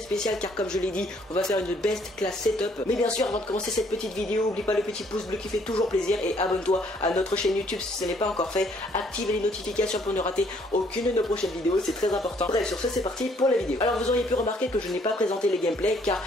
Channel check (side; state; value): both; normal; correlation 0.64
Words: spéciale, car comme je l'ai dit, on va faire une best class setup. Mais bien sûr, avant de commencer cette petite vidéo, oublie pas le petit pouce bleu qui fait toujours plaisir et abonne-toi à notre chaîne YouTube si ce n'est pas encore fait. Active les notifications pour ne rater aucune de nos prochaines vidéos, c'est très important. Bref, sur ce c'est parti pour la vidéo. Alors vous auriez pu remarquer que je n'ai pas présenté les gameplays, car